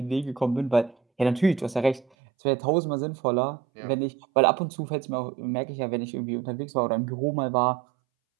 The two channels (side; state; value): left; drops out; at 2.1 s